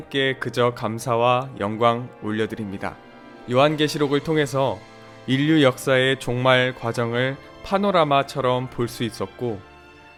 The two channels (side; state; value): both; identical; correlation 1.00